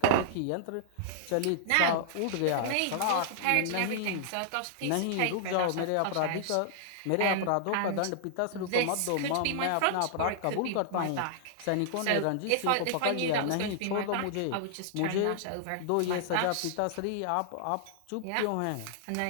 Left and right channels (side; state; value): both; different; correlation -0.01